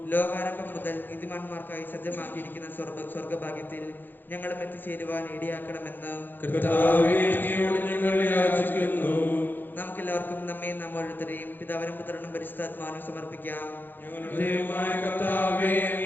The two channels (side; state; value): right; late; 0.091 ms